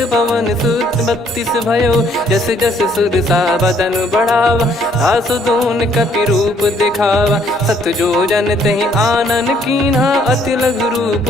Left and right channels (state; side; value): normal; both; correlation 0.65